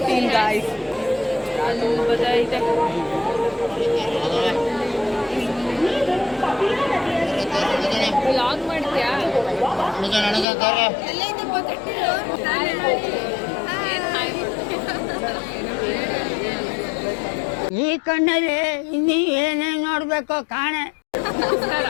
guys. ಅಲ್ಲಿ ಬದೈತೆ. ವ್ಲಾಗ್ ಮಾಡ್ತೀಯಾ? ಈ ಕಣ್ಣಲ್ಲಿ ಇನ್ನೀ ಏನೇನು ನೋಡ್ಬೇಕು ಕಾಣೆ.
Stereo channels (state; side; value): drops out; right; at 10.5 s